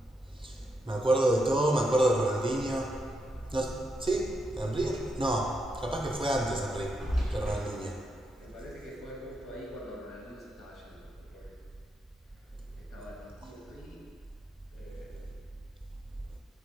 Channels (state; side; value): normal; both; correlation 0.82